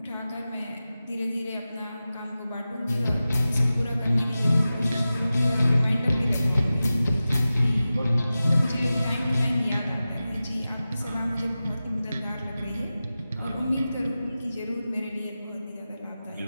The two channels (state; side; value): inverted; both; correlation -0.95